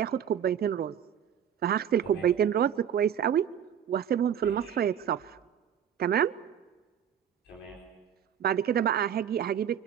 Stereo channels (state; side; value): quieter; left; 9.1 dB